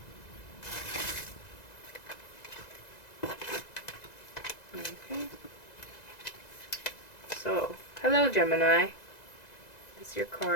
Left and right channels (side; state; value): right; late; 2.0 ms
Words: Okay. So, hello, Gemini. This is your